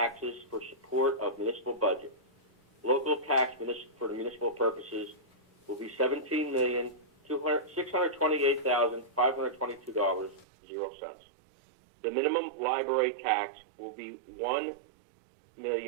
for support of municipal budget. Local tax for the municipal purposes will be $17,628,522.00. The minimum library tax will be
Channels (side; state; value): left; drops out; at 10.5 s